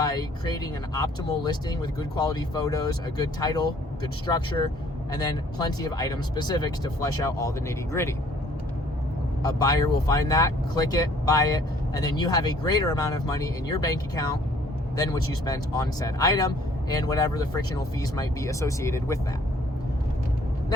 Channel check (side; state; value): both; normal; correlation 0.59